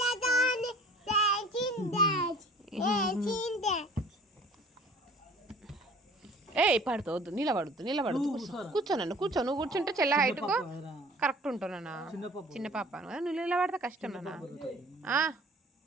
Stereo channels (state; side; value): normal; both; correlation 0.48